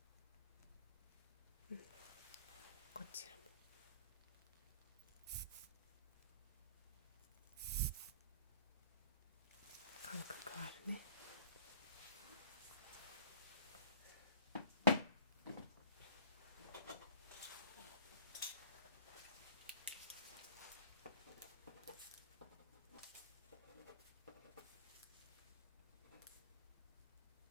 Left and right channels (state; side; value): inverted; both; correlation -0.49